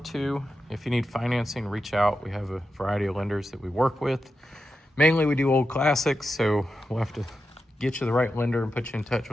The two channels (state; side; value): normal; both; correlation 0.89